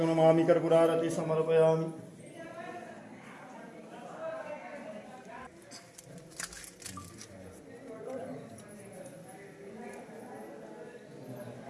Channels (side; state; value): both; identical; correlation 1.00